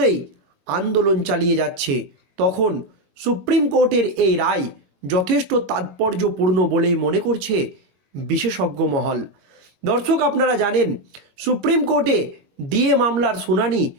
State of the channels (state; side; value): late; left; 22 ms